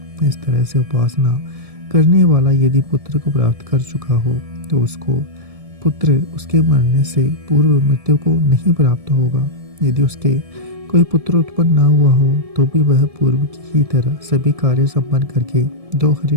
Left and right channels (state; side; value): late; left; 1.7 ms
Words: इस तरह से उपासना करने वाला यदि पुत्र को प्राप्त कर चुका हो तो उसको पुत्र उसके मरने से पूर्व मृत्यु को नहीं प्राप्त होगा। यदि उसके कोई पुत्र उत्पन्न न हुआ हो तो भी वह पूर्व की ही तरह सभी कार्य संपन्न करके 2